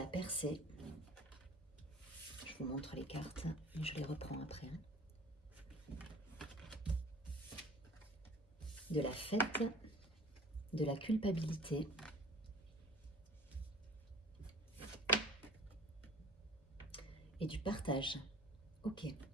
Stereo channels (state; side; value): normal; both; correlation 0.46